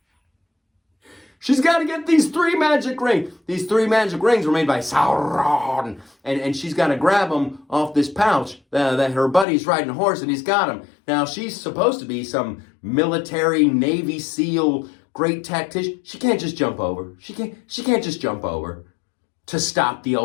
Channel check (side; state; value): right; drops out; at 9.5 s